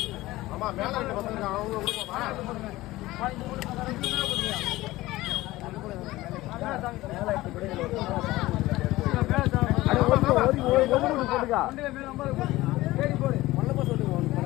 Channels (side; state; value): right; quieter; 18.0 dB